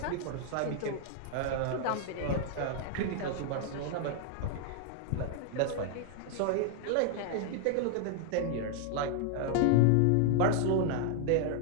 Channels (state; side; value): different; both; correlation 0.00